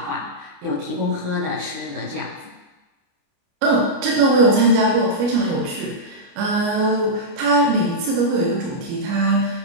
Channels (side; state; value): left; late; 29 ms